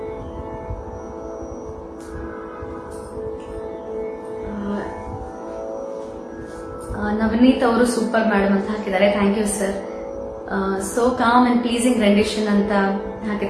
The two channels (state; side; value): identical; both; correlation 1.00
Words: ನವನೀತ್ ಅವರು ಸೂಪರ್ ಮೇಡಮ್ ಅಂತ ಹಾಕಿದ್ದಾರೆ. Thank you sir. So calm and pleasing rendition ಅಂತ